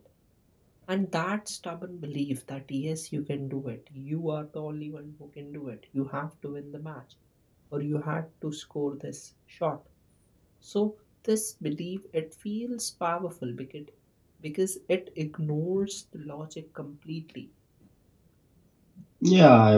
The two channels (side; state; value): both; identical; correlation 1.00